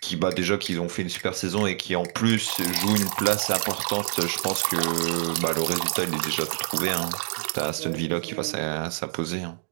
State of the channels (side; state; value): left; silent; digital silence